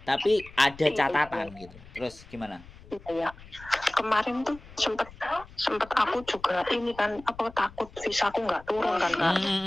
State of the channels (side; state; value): left; noise; rumble, 20 dB below the sound